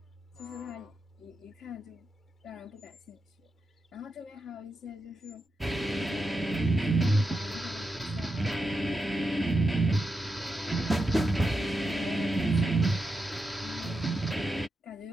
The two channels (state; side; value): normal; both; correlation 0.87